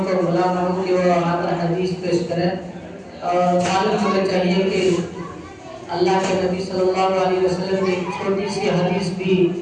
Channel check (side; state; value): both; identical; correlation 1.00